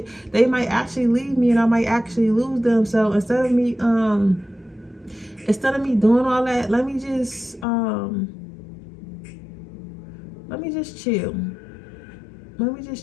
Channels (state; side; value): drops out; right; at 7.7 s